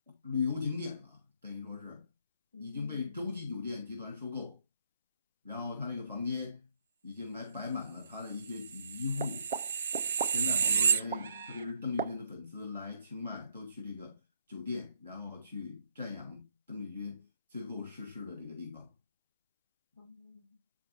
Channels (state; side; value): inverted; both; correlation -0.70